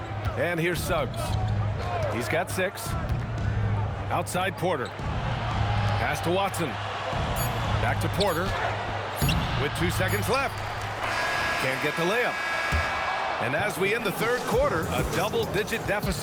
And here's Suggs. He's got 6. Outside Porter. Pass to Watson. Back to Porter. With 2 seconds left. Can't get the layup. And as we end the third quarter, a double-digit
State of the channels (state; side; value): identical; both; correlation 1.00